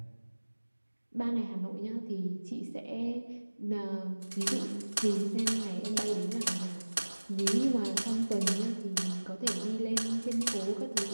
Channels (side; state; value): both; inverted; correlation -1.00